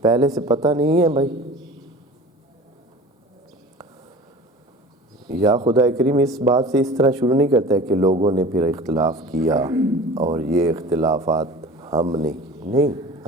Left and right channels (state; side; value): normal; both; correlation 0.39